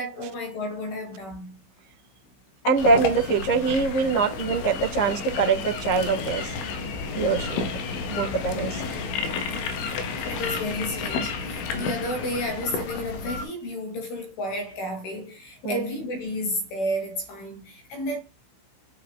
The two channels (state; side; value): late; right; 16 ms